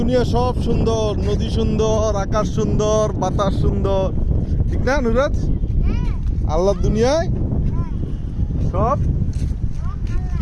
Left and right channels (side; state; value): both; identical; correlation 1.00